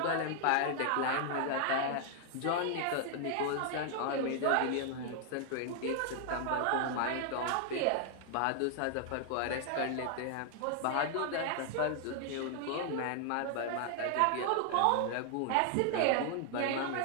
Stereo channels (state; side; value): different; both; correlation 0.00